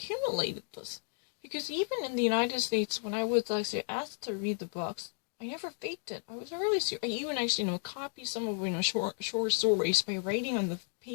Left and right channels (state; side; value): silent; right; 56 dB below the other